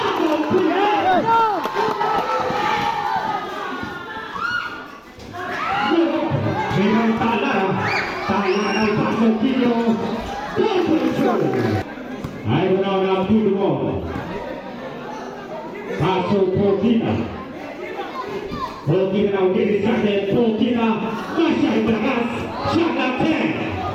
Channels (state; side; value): identical; both; correlation 1.00